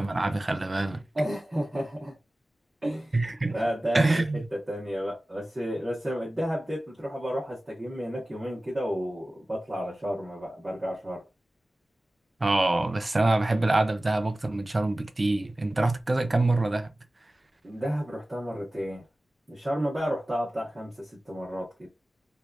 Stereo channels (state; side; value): normal; both; correlation 0.97